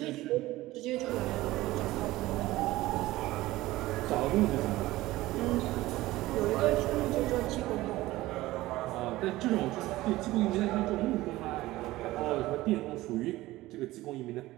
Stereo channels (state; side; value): quieter; left; 17.6 dB